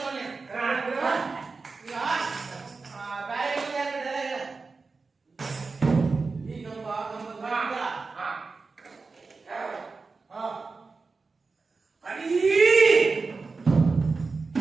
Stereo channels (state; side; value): quieter; left; 4.2 dB